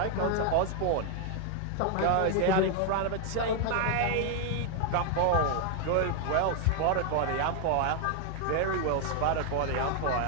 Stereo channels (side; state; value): both; different; correlation 0.00